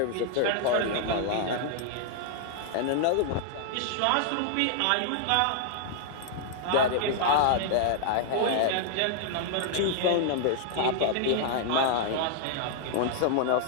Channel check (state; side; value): different; both; correlation -0.01